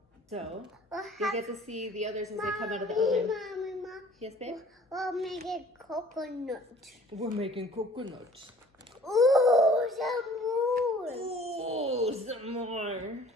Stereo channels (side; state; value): both; normal; correlation 0.51